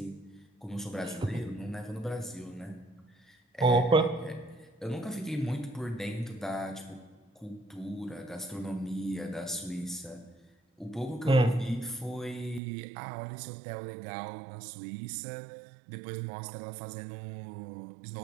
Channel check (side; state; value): left; drops out; at 12.6 s